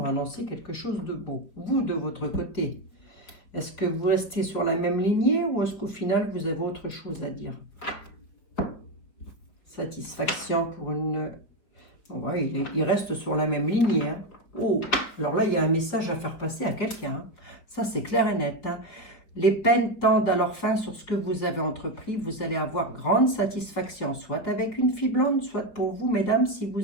annoncé quelque chose de beau. Vous, de votre côté, est-ce que vous restez sur la même lignée ou est-ce qu'au final, vous avez autre chose à dire? Satisfaction pour une... Ouais, il reste sur la même lignée. Oh, alors là, il y a un message à faire passer à quelqu'un. Ça, c'est clair et net. Les peines tendent à leur fin sur ce que vous avez entrepris. Vous allez avoir grande satisfaction, soit avec une fille blonde, soit pour vous, mesdames, si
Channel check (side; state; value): right; late; 5.0 ms